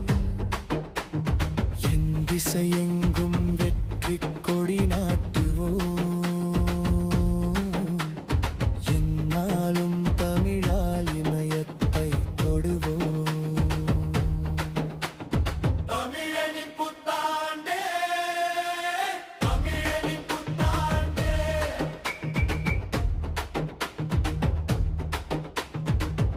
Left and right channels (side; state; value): both; identical; correlation 1.00